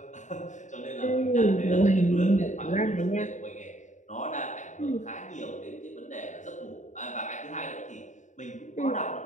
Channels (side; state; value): right; late; 0.35 ms